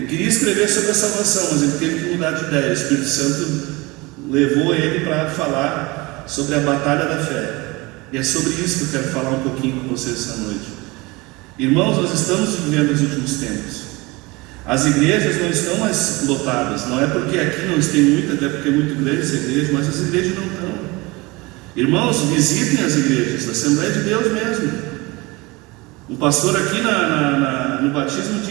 queria escrever sobre a salvação, mas ele teve que mudar de ideia. O Espírito Santo levou ele para falar sobre a batalha da fé. E é sobre isso que eu quero falar um pouquinho com vocês essa noite. Irmãos, nós estamos vivendo os últimos tempos. As igrejas não estão mais lotadas. Não é porque aqui não tem muita, até porque é muito grande essa igreja, mas as igrejas não estão. Irmãos, visitem as igrejas, a Assembleia de Deus mesmo. Um pastor aqui no batismo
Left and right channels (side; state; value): left; quieter; 23.8 dB